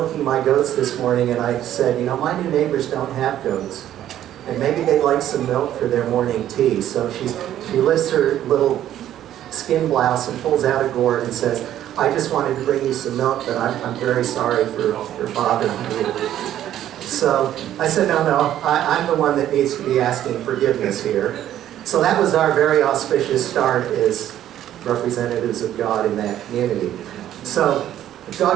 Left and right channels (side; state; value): left; quieter; 11.8 dB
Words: my goats this morning, and I said, you know, my new neighbors don't have goats. And maybe they'd like some milk for their morning tea. So she lifts her little skin blouse and pulls out a gourd and says, I just wanted to bring you some milk, but I'm very sorry for bothering you. So I said, no, I'm the one that needs to be asking forgiveness here. So that was our very auspicious start as representatives of God in that community. So if